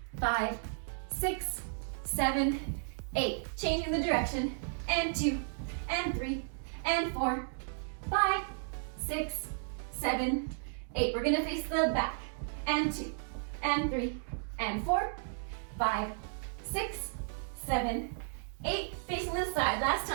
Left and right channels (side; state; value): left; silent; digital silence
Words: 5, 6, 7, 8. Changing the direction. And 2, and 3, and 4, 5, 6, 7, 8. We're gonna face the back. And 2, and 3, and 4, 5, 6, 7, 8. Facing the side. Last